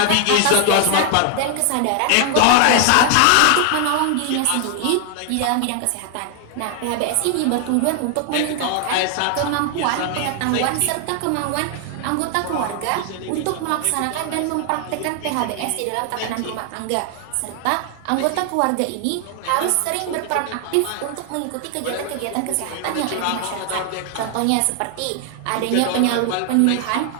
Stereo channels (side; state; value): both; different; correlation 0.00